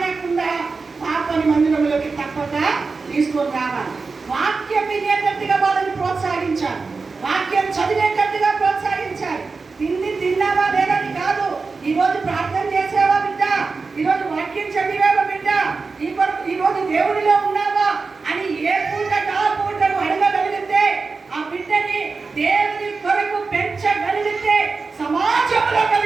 పాపని మందిరంలోకి తప్పక తీసుకొని రావాలి. వాక్యం వినేటట్టుగా వాళ్ళని ప్రోత్సహించాలి. వాక్యం చదివేటట్టుగా ప్రోత్సహించాలి. తిన్నావా లేదని కాదు, ఈరోజు ప్రార్థన చేసావా బిడ్డ, ఈరోజు వాక్యం చదివావా బిడ్డ, ఈరోజు దేవుడిలో ఉన్నావా అని ఏ పూటకు ఆ పూటను అడగగలిగితే, ఆ బిడ్డని దేవుని కొరకు పెంచగలిగితే సమాజంలో ఒక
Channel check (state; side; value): quieter; left; 4.3 dB